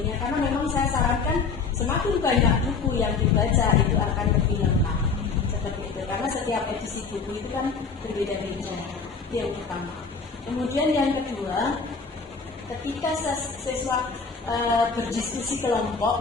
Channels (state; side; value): quieter; right; 5.0 dB